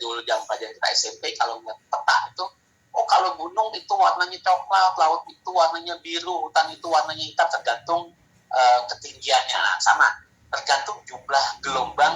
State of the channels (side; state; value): both; identical; correlation 1.00